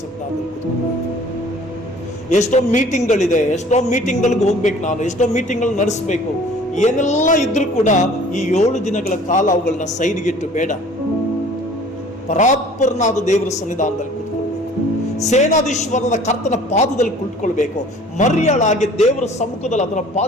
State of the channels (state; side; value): normal; both; correlation 0.50